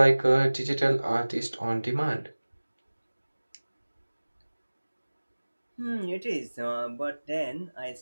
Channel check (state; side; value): inverted; both; correlation -1.00